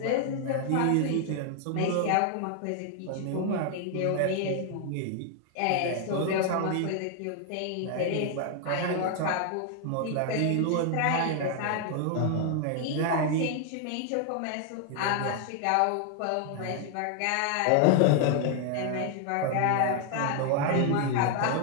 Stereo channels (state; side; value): different; both; correlation 0.00